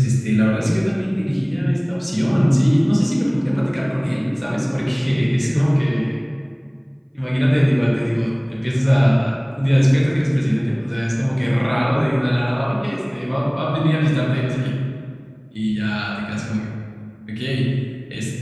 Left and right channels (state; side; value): identical; both; correlation 1.00